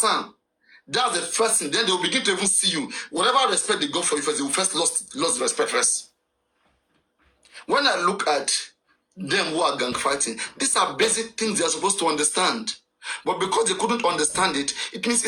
That's the first thing. Then they will begin to even see you. Whatever respect they got for you first, they will first lost respect first. When I look at them who are gang fighting, these are basic things they are supposed to understand. But because they couldn't understand it, it means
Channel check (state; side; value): identical; both; correlation 1.00